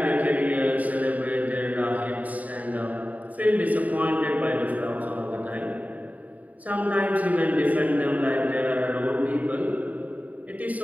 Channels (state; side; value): late; left; 0.073 ms